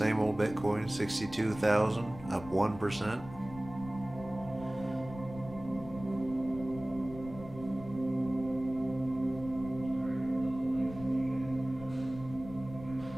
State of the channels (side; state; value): left; noise; rumble, 15 dB below the sound